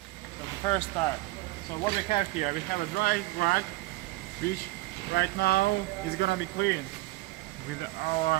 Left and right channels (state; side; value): quieter; left; 20.5 dB